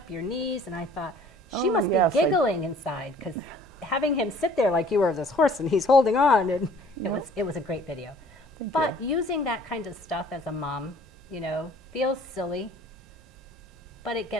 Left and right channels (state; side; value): normal; both; correlation 0.53